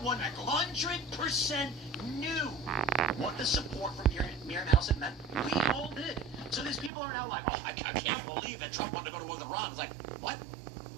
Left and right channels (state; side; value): drops out; left; at 6.9 s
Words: 100% knew what the support from Miriam Adelson meant. We all did. So these people are now like, oh, I can't believe that Trump wanted to go to war with Iran. It's like, what?